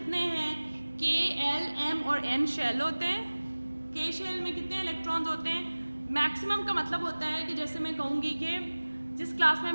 हैं? K, L, M और N शेल होते हैं. K शेल में कितने इलेक्ट्रॉन्स होते हैं? मैक्सिमम का मतलब होता है कि जैसे मैं कहूँगी कि जिस क्लास में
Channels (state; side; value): inverted; both; correlation -1.00